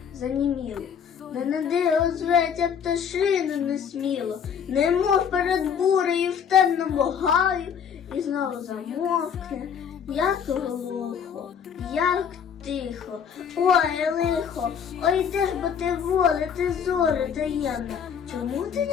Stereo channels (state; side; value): quieter; right; 7.5 dB